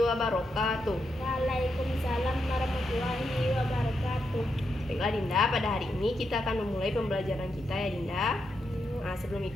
wabarakatuh. Waalaikumsalam warahmatullahi wabarakatuh. Baiklah Dinda, pada hari ini kita akan memulai pembelajaran kita ya Dinda. Nah, sebelum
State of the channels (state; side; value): normal; both; correlation 0.83